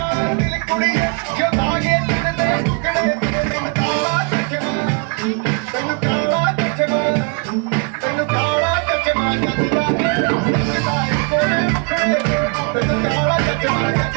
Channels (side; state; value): left; quieter; 35.4 dB